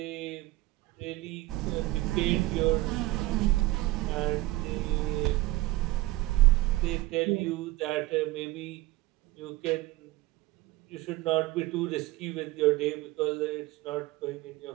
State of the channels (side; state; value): left; quieter; 18.0 dB